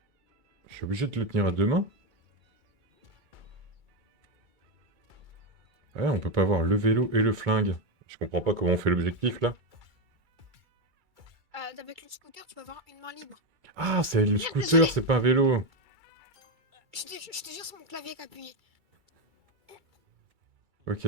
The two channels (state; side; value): late; left; 2.3 ms